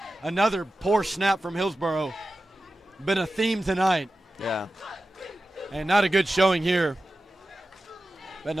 Another poor snap from Hillsboro. Been a theme tonight. Yeah. And not a good showing here. That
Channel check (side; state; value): both; normal; correlation 0.94